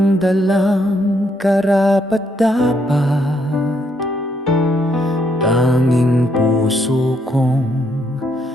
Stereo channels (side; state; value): both; normal; correlation 0.74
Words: dalang karapat-dapat, tanging puso kong